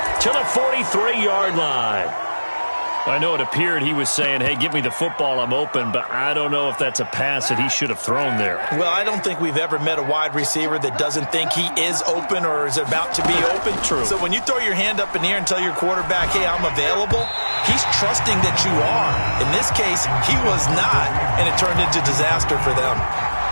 to the 43-yard line. I know it appeared he was saying, hey, give me the football, I'm open, but I don't know if that's a pass that he should have thrown there. Well, I don't think we've ever met a wide receiver that doesn't think he is open or is about to be open. True. So when you throw your hand up in the air and tell your quarterback, hey, I'm available, he's trusting that you are. In this case, he was not, and it turned into disaster for them.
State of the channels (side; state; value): both; inverted; correlation -1.00